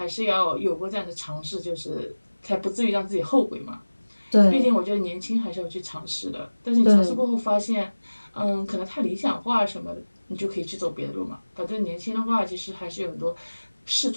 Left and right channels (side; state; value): both; inverted; correlation -1.00